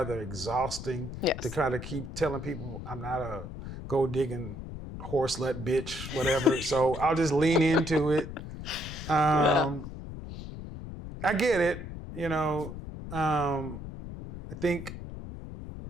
exhausting to kind of keep telling people I'm not a gold digging horse slut bitch, whatever. So I'll just lean into it. I get it. I think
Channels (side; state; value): left; noise; rumble, 10 dB below the sound